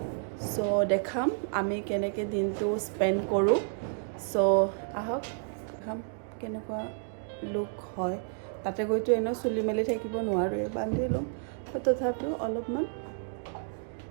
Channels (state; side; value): silent; left; digital silence